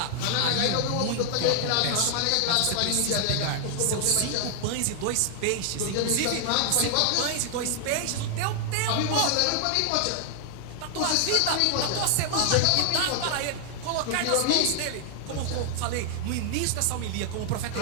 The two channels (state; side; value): different; both; correlation 0.00